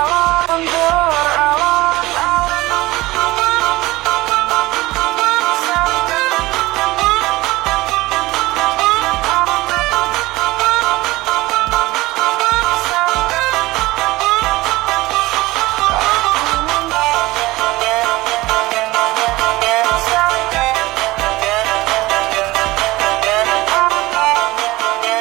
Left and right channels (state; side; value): quieter; left; 19.4 dB